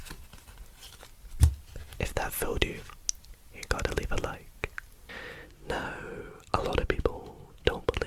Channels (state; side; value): identical; both; correlation 1.00